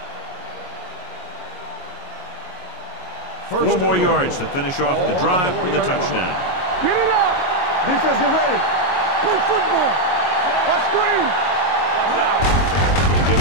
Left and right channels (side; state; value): right; late; 22 ms